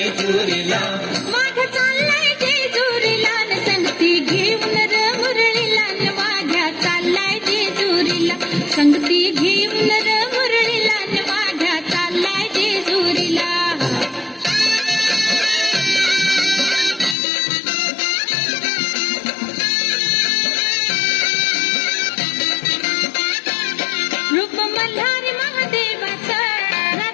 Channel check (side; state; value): right; drops out; at 17.2 s